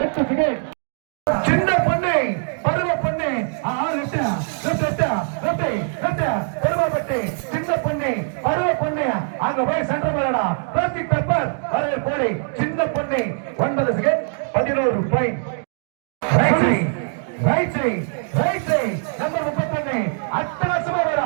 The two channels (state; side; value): silent; left; 64 dB below the other